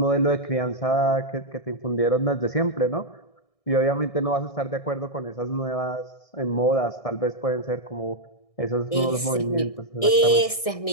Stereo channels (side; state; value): right; late; 1.6 ms